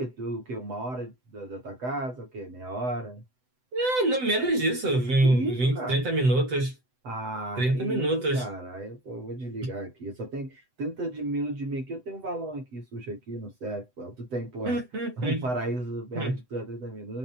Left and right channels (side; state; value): left; late; 7.9 ms